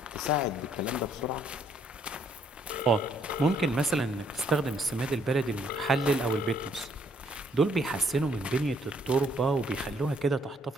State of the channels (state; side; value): normal; both; correlation 0.67